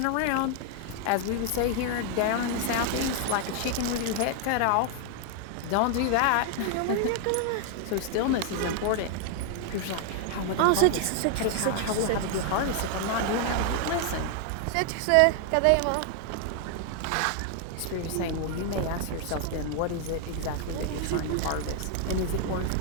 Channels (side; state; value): both; different; correlation 0.00